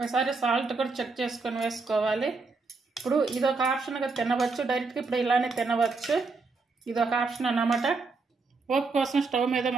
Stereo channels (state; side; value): quieter; left; 4.1 dB